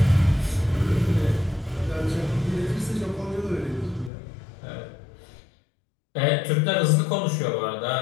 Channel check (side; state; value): right; drops out; at 4.1 s